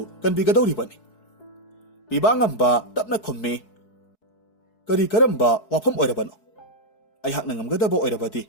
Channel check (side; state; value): right; late; 4.7 ms